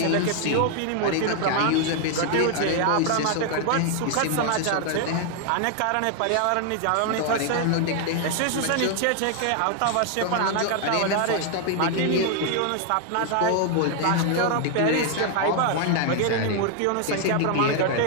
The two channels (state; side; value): different; both; correlation 0.00